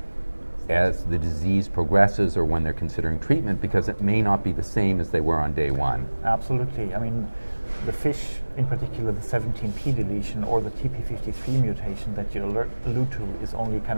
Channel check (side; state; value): both; inverted; correlation -1.00